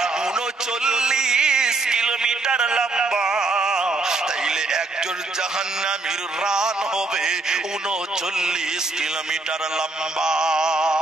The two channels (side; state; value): left; quieter; 3.3 dB